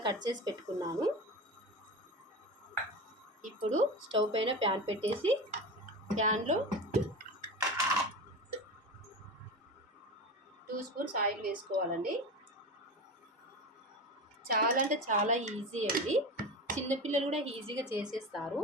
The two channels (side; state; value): both; normal; correlation 0.26